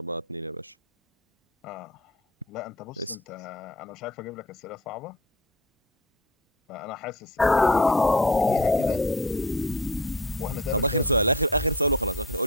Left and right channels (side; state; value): both; normal; correlation 0.34